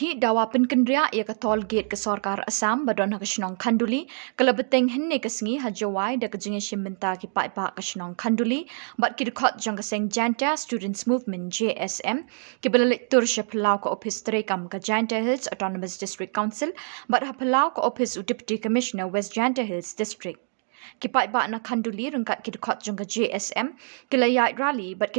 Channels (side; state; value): left; silent; 57 dB below the other